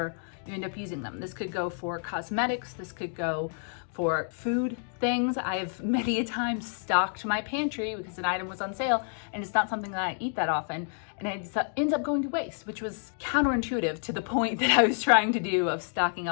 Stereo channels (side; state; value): right; silent; 58 dB below the other